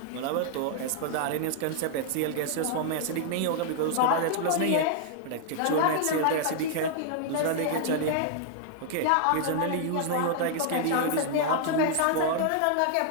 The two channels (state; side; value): different; both; correlation -0.01